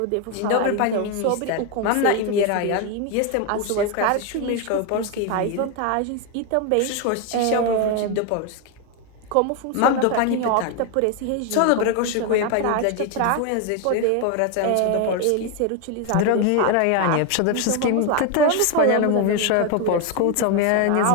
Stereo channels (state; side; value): different; both; correlation 0.01